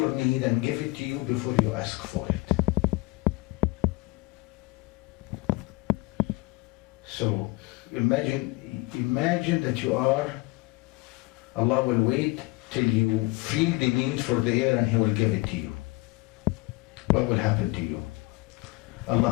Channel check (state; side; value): quieter; right; 24.0 dB